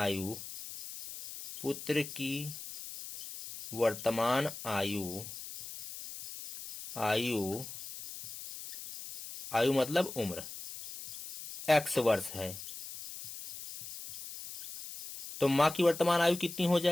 पुत्र की वर्तमान आयु आयु आयु मतलब उम्र x वर्ष है। तो माँ की वर्तमान आयु कितनी हो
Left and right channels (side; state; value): left; noise; hiss, 10 dB below the sound